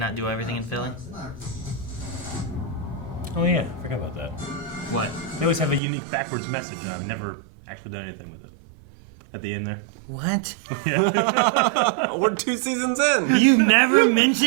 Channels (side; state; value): left; drops out; at 5.8 s